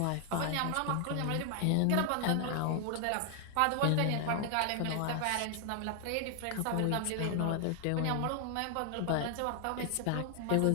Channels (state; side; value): different; both; correlation 0.00